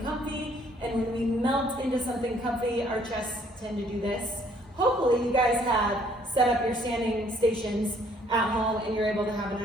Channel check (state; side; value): normal; both; correlation 0.63